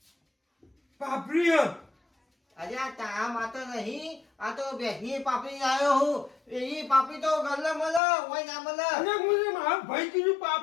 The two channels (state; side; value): drops out; right; at 8.0 s